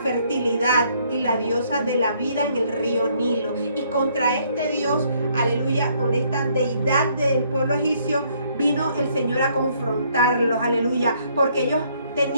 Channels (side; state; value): both; inverted; correlation -0.66